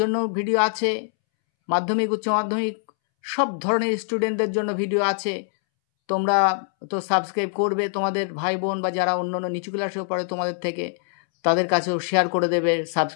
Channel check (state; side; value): silent; right; 63 dB below the other